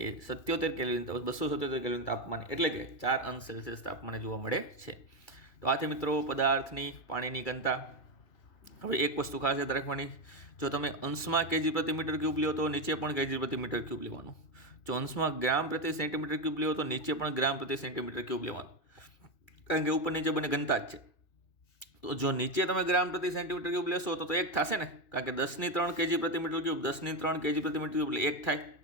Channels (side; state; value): right; late; 2.3 ms